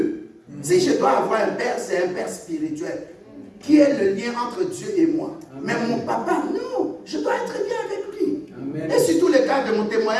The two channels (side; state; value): both; identical; correlation 1.00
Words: Si je dois avoir un père, c'est un père spirituel. Qui est le lien entre Dieu et moi. Amen. Mais mon papa, non. Je dois être bien avec lui. Amen. Et sur tous les cas de mon